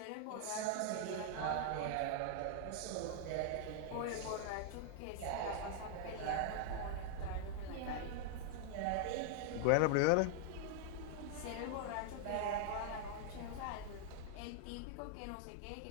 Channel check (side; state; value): both; different; correlation 0.00